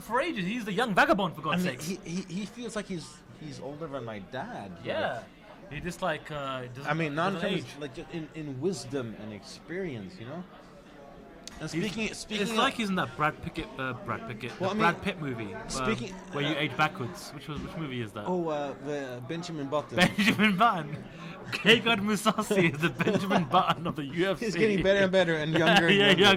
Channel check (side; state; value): both; identical; correlation 1.00